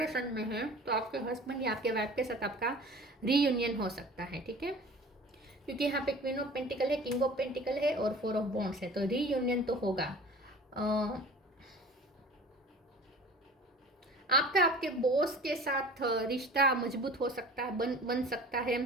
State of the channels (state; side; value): normal; both; correlation 0.42